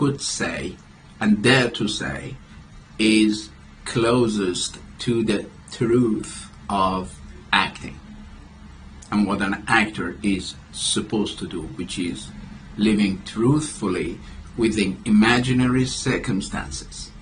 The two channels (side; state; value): both; identical; correlation 1.00